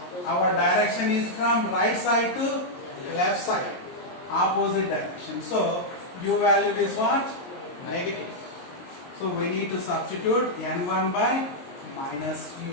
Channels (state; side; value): late; right; 22 ms